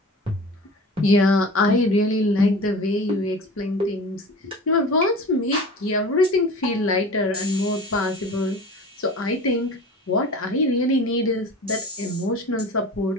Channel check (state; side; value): normal; both; correlation 0.37